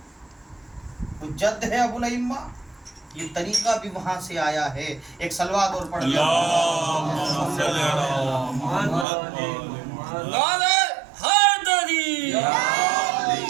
تو جد ہے ابو الائمہ، یہ طریقہ بھی وہاں سے آیا ہے۔ ایک صلوات اور پڑھ لیا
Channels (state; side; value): drops out; left; at 9.1 s